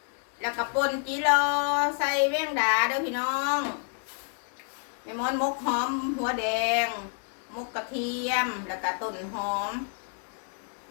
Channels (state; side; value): silent; right; 57 dB below the other